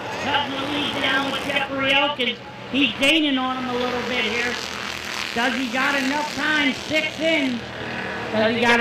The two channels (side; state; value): both; identical; correlation 1.00